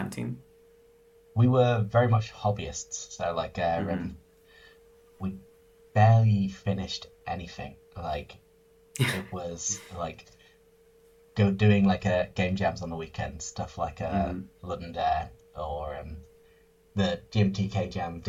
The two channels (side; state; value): both; identical; correlation 1.00